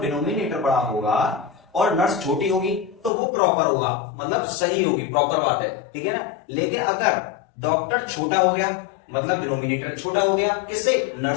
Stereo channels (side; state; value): right; drops out; at 3.1 s